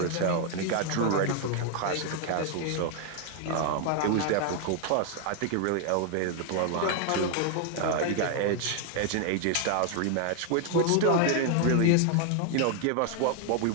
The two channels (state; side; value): different; both; correlation 0.00